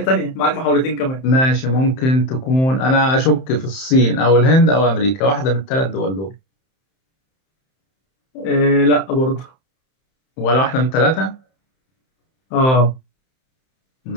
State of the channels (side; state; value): right; late; 31 ms